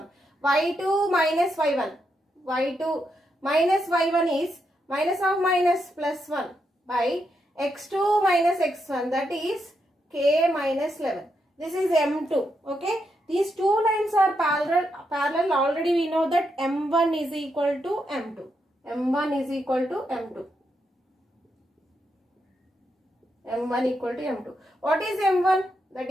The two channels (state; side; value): normal; both; correlation 0.82